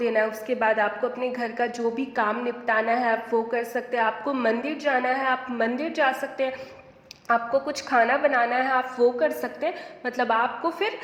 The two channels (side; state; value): both; identical; correlation 1.00